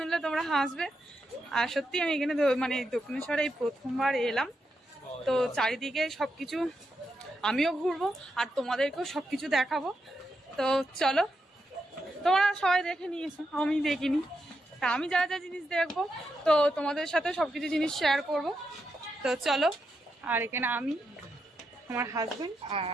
তোমরা হাসবে। আর সত্যি আমি এখানে মানে দক্ষিণেশ্বরে এই প্রথমবার এলাম। তো চারিদিকে সবকিছু আমিও ঘুরবো আর তোমাদেরকেও সবকিছু দেখাবো। তো চলো, তোমরা সবাই দেখে নিয়েছো, আমি দেখিনি। তা আমি যা যা জিনিস দেখবো তো তোমাদের সাথে সবকিছু জিনিস শেয়ার করব। তো চলো, আর এখানে আমি, আমার হাজবেন্ড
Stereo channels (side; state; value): both; normal; correlation 0.84